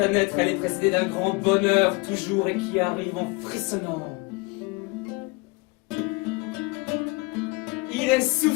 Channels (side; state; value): right; quieter; 26.3 dB